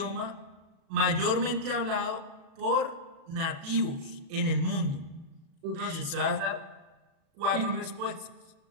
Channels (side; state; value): left; late; 37 ms